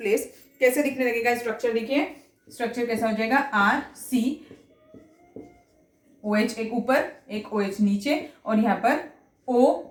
कैसे दिखने लगेगा स्ट्रक्चर? देखिए स्ट्रक्चर कैसा हो जाएगा? RCOH एक ऊपर, एक OH नीचे, और यहाँ पर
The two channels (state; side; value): identical; both; correlation 1.00